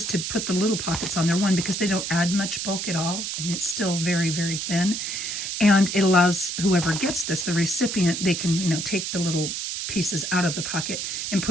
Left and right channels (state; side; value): noise; right; hiss, 4 dB below the sound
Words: to put the little pockets on there, one, because they don't add much bulk at all. I mean, it's still very, very thin, and it allows whoever gets this, the recipient, they can, you know, take the little pieces out of the pocket and